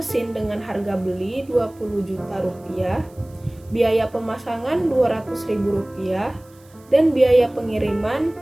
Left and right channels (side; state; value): right; noise; hiss, 29 dB below the sound